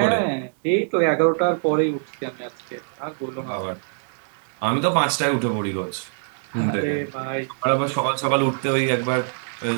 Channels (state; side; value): silent; left; digital silence